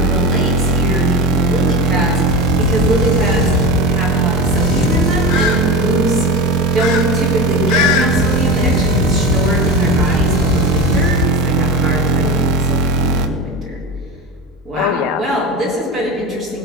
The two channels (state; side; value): normal; both; correlation 0.25